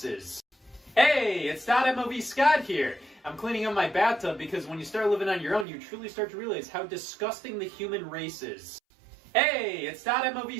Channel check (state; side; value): drops out; left; at 5.7 s